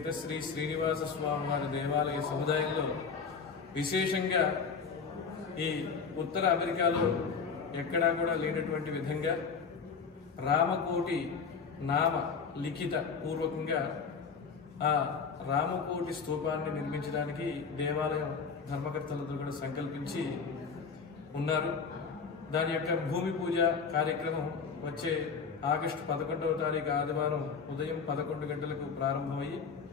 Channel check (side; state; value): right; quieter; 5.6 dB